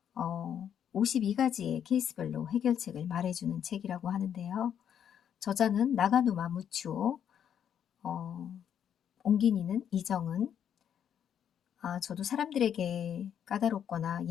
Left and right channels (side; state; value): right; quieter; 8.9 dB